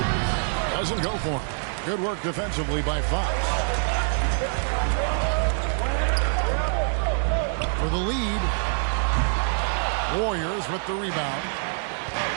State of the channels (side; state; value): left; silent; 62 dB below the other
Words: Doesn't go for him. Good work defensively by Fox. For the lead. Warriors with the rebound.